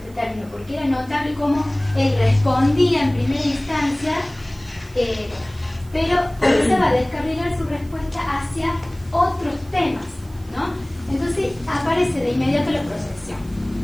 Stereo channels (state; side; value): noise; right; hiss, 26 dB below the sound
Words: término porque era notable cómo él respondía en primera instancia, pero comenzaba a descarrilar su respuesta hacia otros temas, ¿no? Entonces aparece de inmediato la proyección.